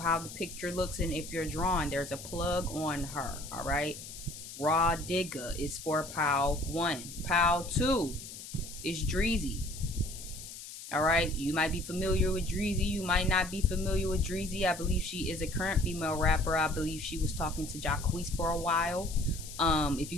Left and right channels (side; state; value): left; noise; hiss, 12 dB below the sound